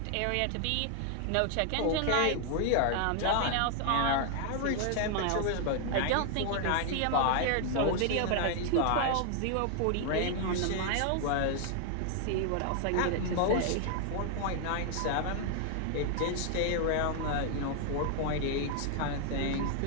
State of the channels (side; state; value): both; different; correlation 0.00